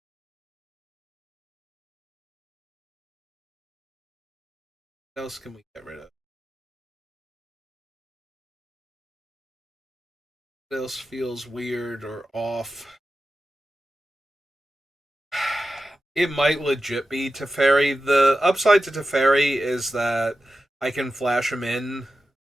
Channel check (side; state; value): both; normal; correlation 0.92